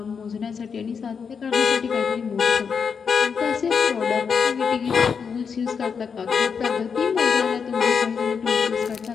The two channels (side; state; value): right; quieter; 6.2 dB